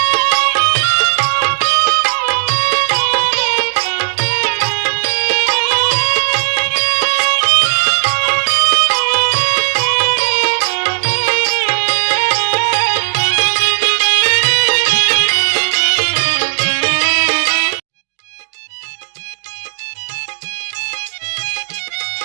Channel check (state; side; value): silent; left; digital silence